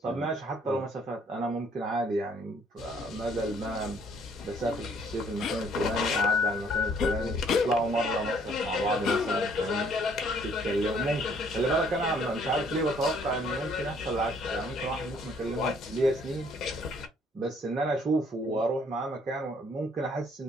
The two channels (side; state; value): both; normal; correlation 0.63